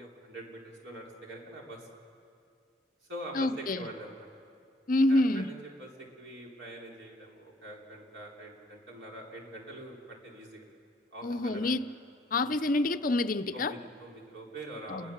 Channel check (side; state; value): both; normal; correlation 0.63